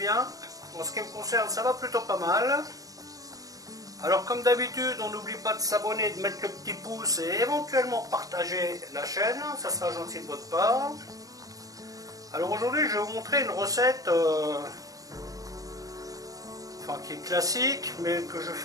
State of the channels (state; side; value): late; left; 0.17 ms